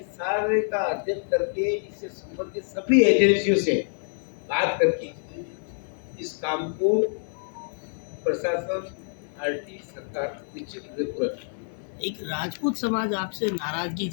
सारे का अध्ययन करके इससे संबंधित सभी एजेंसियों से बात करके इस काम को प्रशासन, आरटी, सरकार निश्चित रूप से पूरा करेगी। एक राजपूत समाज आपसे नाराजगी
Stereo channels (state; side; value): silent; right; 60 dB below the other